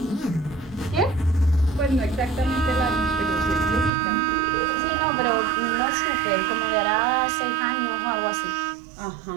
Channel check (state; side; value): drops out; left; at 3.9 s